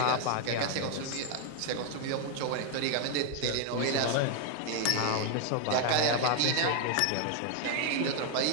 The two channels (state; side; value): different; both; correlation 0.00